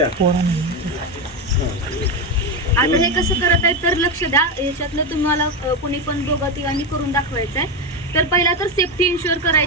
आता हे कसं करत आहे तर लक्ष द्या. याच्यातलं तुम्हाला कोणी पण दोघं तिघांनी करून दाखवायचं आहे. तर पहिला तर सेफ्टी इन्शुअर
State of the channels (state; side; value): normal; both; correlation 0.12